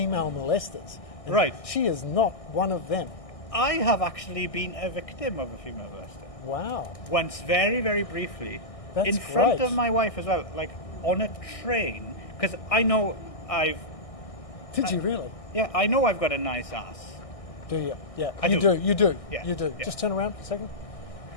molesters. And Right. She is not one of them. I have actually been a victim of a female molester. Wow. Once, very, very briefly, That's in front great. of my wife as well, like on a train, because I know Did you really? I know I've got a nice ass. Do you? Yeah. I You do. You do. Yeah, You do. yeah. Just turn around for a second.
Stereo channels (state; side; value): late; right; 1.6 ms